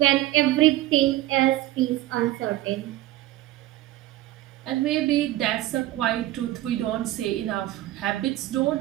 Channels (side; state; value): left; quieter; 15.6 dB